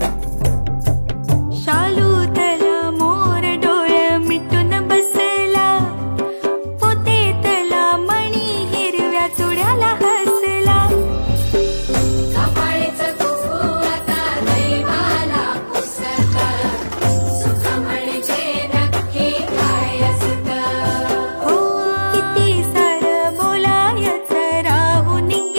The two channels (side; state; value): both; inverted; correlation -1.00